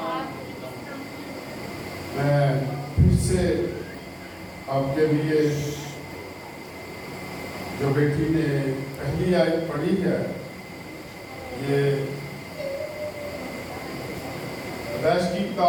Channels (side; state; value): both; identical; correlation 1.00